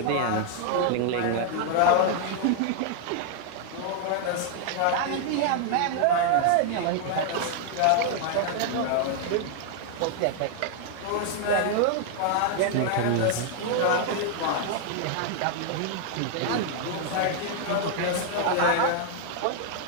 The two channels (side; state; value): both; different; correlation 0.00